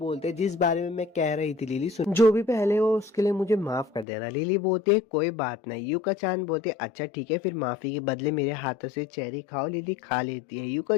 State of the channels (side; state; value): right; drops out; at 4.0 s